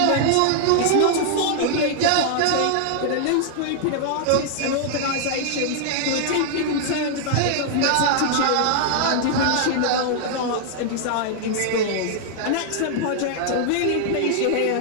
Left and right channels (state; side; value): different; both; correlation -0.01